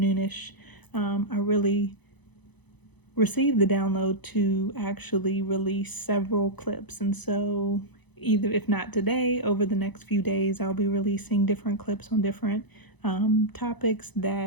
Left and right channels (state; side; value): late; right; 1.0 ms